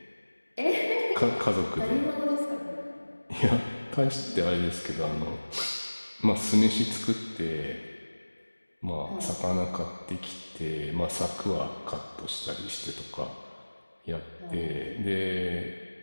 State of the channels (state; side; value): inverted; both; correlation -1.00